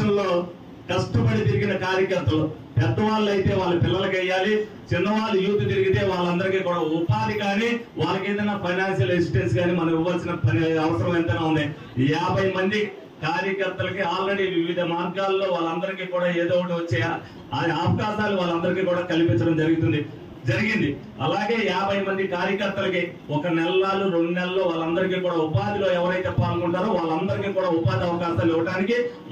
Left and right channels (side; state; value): both; identical; correlation 1.00